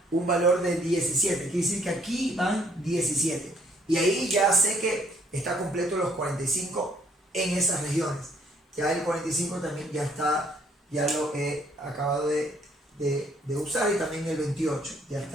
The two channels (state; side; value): normal; both; correlation 0.65